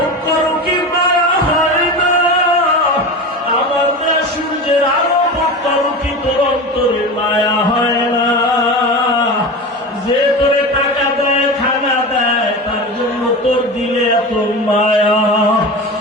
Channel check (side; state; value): both; normal; correlation 0.28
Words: করো কি মায়া হয় না? আমার দেওয়া সূর্যের আলো ভোগ করো কি তোর অন্তরে মায়া হয় না? যে তোরে টাকা দেয়, খানা দেয়, তার জন্য তোর দিলে এত মায়া।